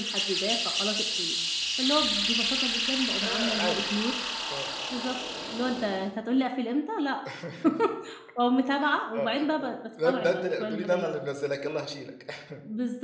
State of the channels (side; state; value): both; identical; correlation 1.00